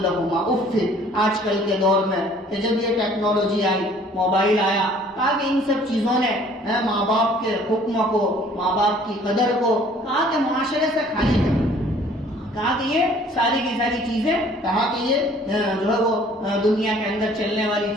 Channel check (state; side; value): normal; both; correlation 0.55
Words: لَّهُمَا اُفٍّ. آج کل کے دور میں کہ جب یہ ٹیکنالوجی آئی، موبائل آیا، تاکہ ان سب چیزوں نے ماں باپ کے حکم کو، ماں باپ کی قدر کو کہا کہ معاشرے سے خالی کر، کہا کہ یہ ساری کی ساری چیزیں، کہا کہ یہ جو ہے وہ دنیا کے اندر چلنے والی